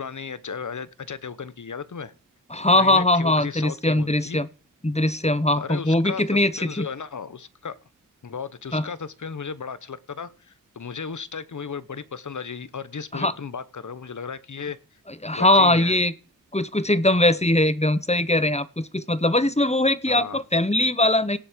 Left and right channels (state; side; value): normal; both; correlation 0.30